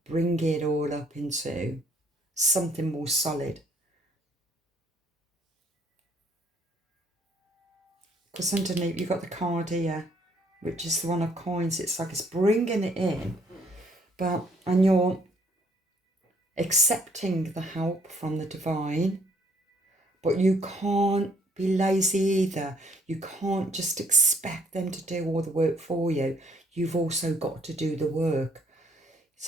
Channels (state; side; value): normal; both; correlation 0.64